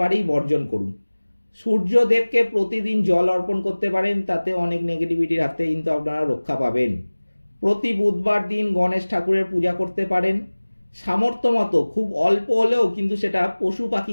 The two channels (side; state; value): both; inverted; correlation -1.00